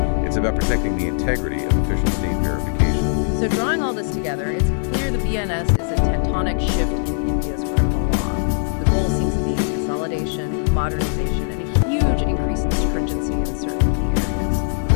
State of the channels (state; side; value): silent; right; digital silence